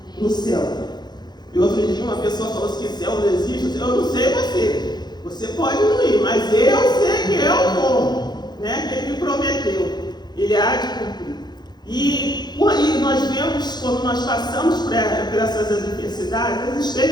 no céu. E outro dia uma pessoa falou assim, que céu não existe. Eu não sei você pode não ir, mas eu sei que eu vou, né? Que Ele me prometeu, Ele há de cumprir. E nós vemos, quando nós passamos por essas adversidades, as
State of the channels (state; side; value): late; right; 0.21 ms